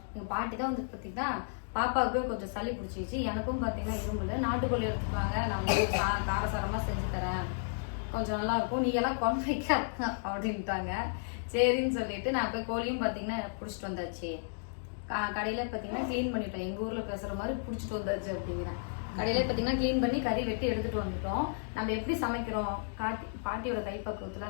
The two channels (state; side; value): silent; right; digital silence